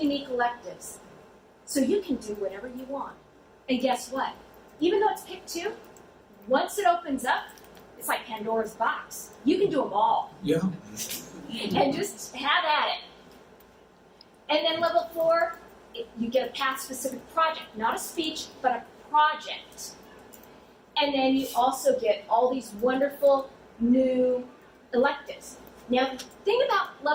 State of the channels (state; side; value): identical; both; correlation 1.00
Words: unique electives. So you can do whatever you want. And guess what? Even though it's pick 2, once it opens up, it's like Pandora's box. You can do them all. Yeah. And just have at it. And then level 4, you get a path-specific project. Not a speech, but a project. And then you also get all these wonderful new electives. Now, the thing about